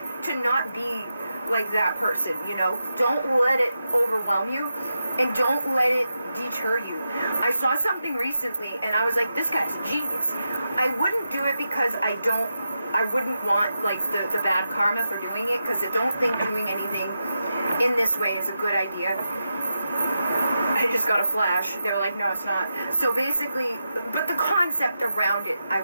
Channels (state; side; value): inverted; both; correlation -0.88